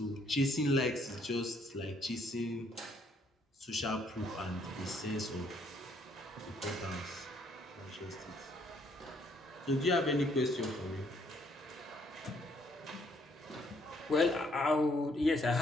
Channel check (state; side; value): normal; both; correlation 0.68